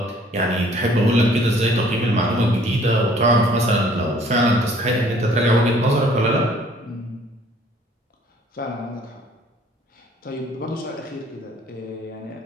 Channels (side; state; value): both; normal; correlation 0.57